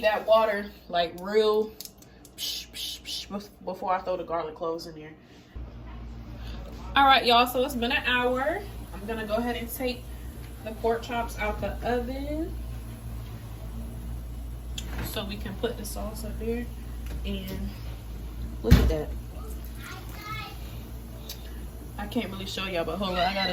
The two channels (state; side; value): identical; both; correlation 1.00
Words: that water like real before I throw the garlic cloves in there. All right, y'all, so it's been an hour. I'm gonna go ahead and take the pork chops out the oven so we can put the sauce up there. And look at that. I can't really show y'all, but hold on, I